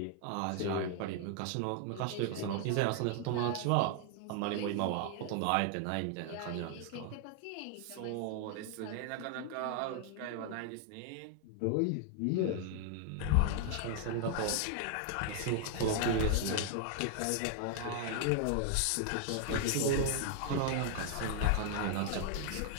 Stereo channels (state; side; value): different; both; correlation 0.00